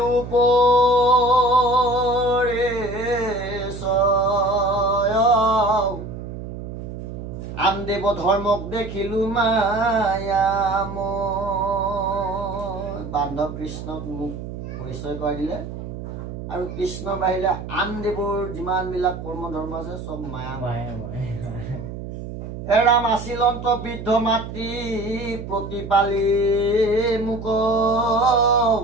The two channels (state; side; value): noise; right; hum, 9 dB below the sound